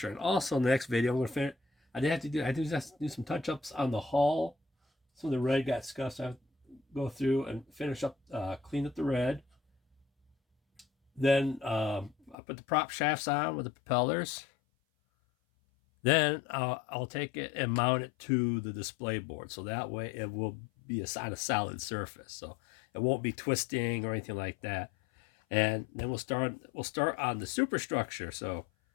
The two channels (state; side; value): drops out; right; at 12.4 s